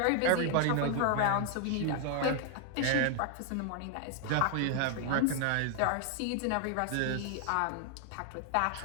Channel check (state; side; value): different; both; correlation 0.00